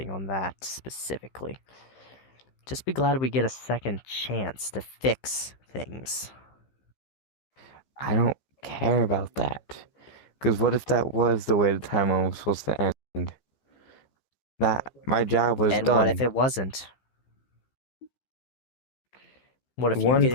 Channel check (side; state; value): right; late; 15 ms